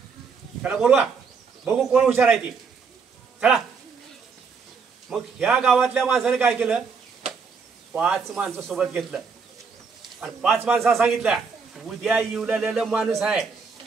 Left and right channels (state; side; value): quieter; left; 5.4 dB